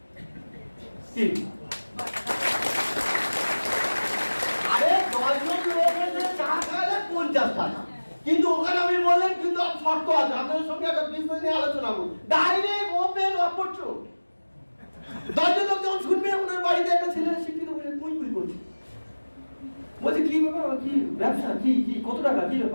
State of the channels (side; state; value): both; inverted; correlation -1.00